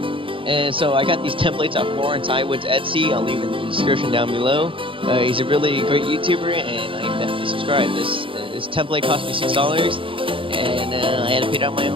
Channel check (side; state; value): left; late; 0.25 ms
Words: And so I got these templates off Lawrence Iwood's Etsy. I'll leave it in the description down below. He's a really great YouTuber, and I am definitely subscribed. This template cost me $6, and I had to pay it out of my